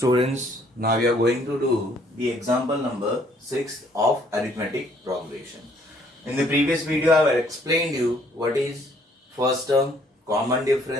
now we are going to do the example number 6 of arithmetic progression. In the previous video, I have explained you what is first term, common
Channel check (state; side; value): normal; both; correlation 0.63